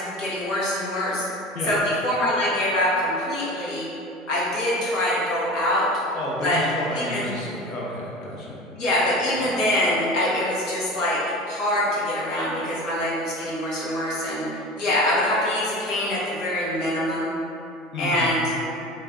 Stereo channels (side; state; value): both; normal; correlation 0.34